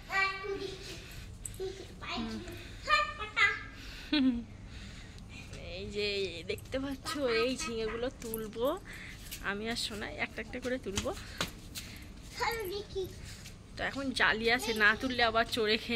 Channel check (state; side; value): identical; both; correlation 1.00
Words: এই যে দেখতে পাচ্ছ এই ঝিঙেগুলো তুলবো আমি আর সোনা, একটা একটা করে তুলবো। তো এখন জালি আছে, না তুললে আবার চোরে